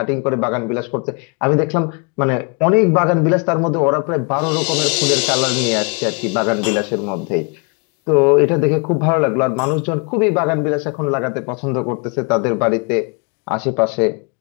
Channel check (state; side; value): quieter; right; 34.8 dB